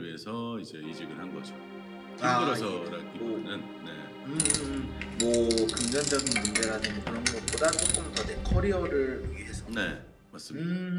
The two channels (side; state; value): both; identical; correlation 1.00